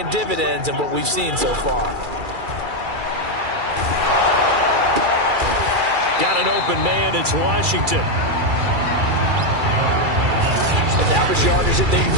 dividends in what we've seen so far. Got an open man. It's Washington. And that was yardage that they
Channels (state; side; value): late; left; 2.4 ms